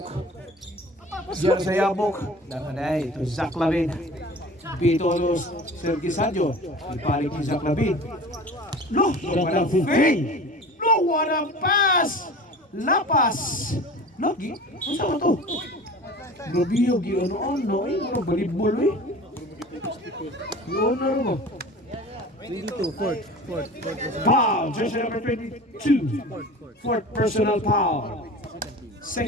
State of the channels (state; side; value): normal; both; correlation 0.39